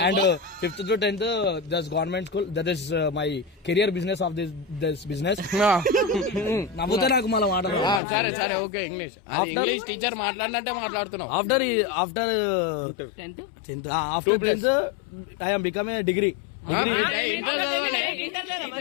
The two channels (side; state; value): right; drops out; at 8.0 s